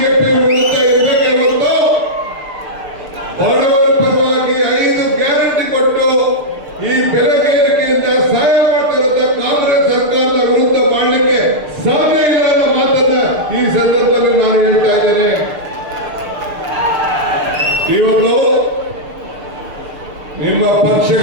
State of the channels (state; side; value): late; left; 6.7 ms